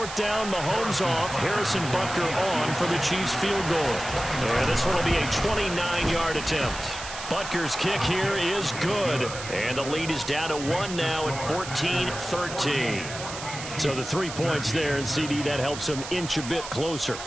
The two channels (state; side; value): noise; right; hiss, 10 dB below the sound